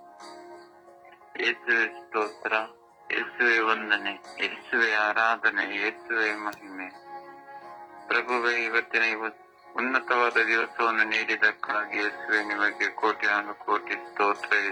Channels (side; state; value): both; identical; correlation 1.00